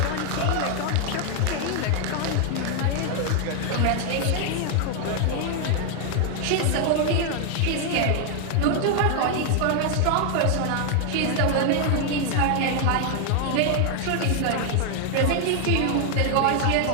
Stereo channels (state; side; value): different; both; correlation 0.00